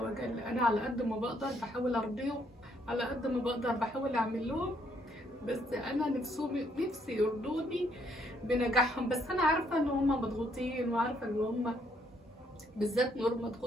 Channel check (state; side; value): normal; both; correlation 0.70